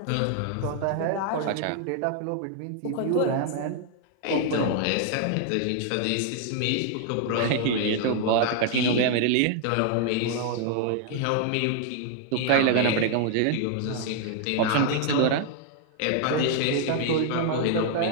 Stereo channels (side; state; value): both; different; correlation 0.00